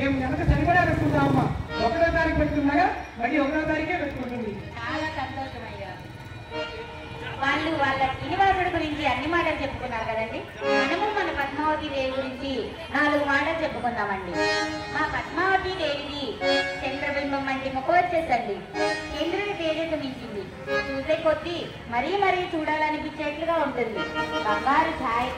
వెనక సరిపడా పెట్టుకుంటామమ్మా. 1వ తారీఖు పెట్టుకున్నాగా మళ్ళీ 1వ తారీఖే పెట్టుకుంటుంది. చాలా సంతోషం అయ్యా. వాళ్ళు వాళ్ళ శ్రీనివాసుడి గురించి అన్ని మాటలు చెప్పుకున్నారు కదండి. మనము మన పద్మావతి దేవి గురించి 4 మాటలు చెప్పుకుందామండి. మా పద్మావతి దేవిది చంద్రబింబం వంటి ముఖం వచ్చేసండి. చంద్రుడి తేజస్సు మించింది. చూసే కొద్దీ మరీ మరీ చూడాలనిపించేట్లుగా ఉంటుంది. బంగారు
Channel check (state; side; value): identical; both; correlation 1.00